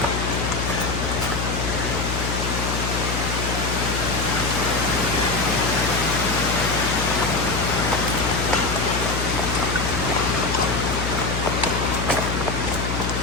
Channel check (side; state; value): left; noise; hum, 2 dB below the sound